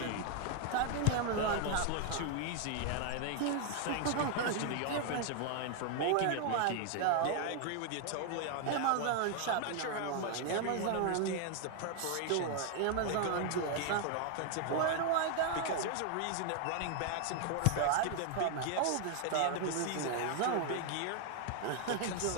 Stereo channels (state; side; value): different; both; correlation 0.00